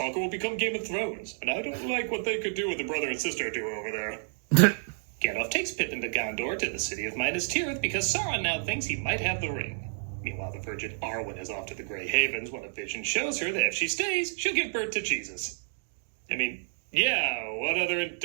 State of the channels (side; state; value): left; silent; digital silence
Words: or we'll become Game of Thrones. And I don't like what they could do with the brother and sister duo over there. Gandalf takes Pippin to Gondor, to the city of Minas Tirith, because Sauron now thinks he might have the ring. Meanwhile, the Virgin Arwen is off to the Grey Havens when a vision shows her that if she stays, she'll give birth to Jesus. I mean, yeah, what other